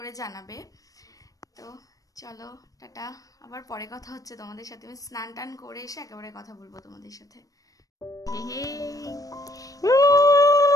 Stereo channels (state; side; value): late; right; 0.17 ms